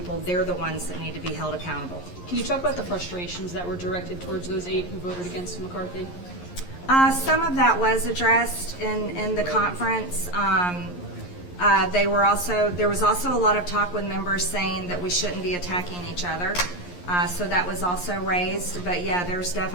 they're the ones that need to be held accountable. Can you talk about the frustrations that were directed towards those 8 who voted against McCarthy? Some of that was addressed in the conference. There was also a lot of talk with members saying that we shouldn't be attacking each other. So that was also raised. But yeah, there's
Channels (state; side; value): late; right; 11 ms